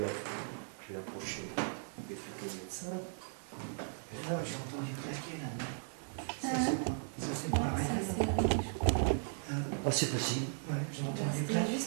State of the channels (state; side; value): silent; left; digital silence